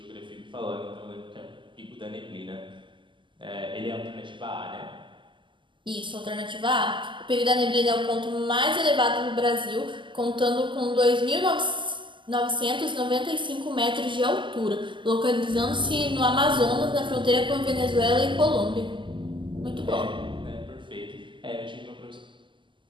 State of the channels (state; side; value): late; left; 0.24 ms